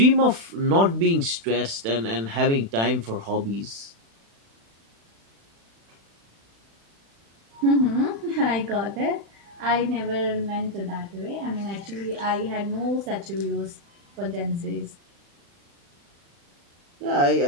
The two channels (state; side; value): late; left; 36 ms